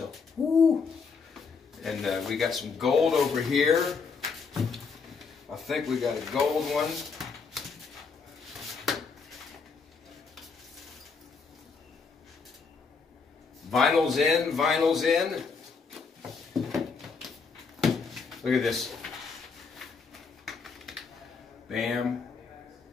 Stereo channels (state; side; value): quieter; right; 5.1 dB